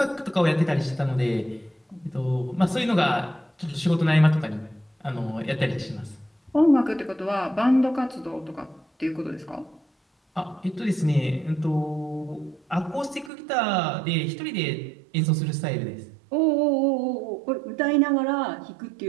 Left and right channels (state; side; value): drops out; left; at 13.3 s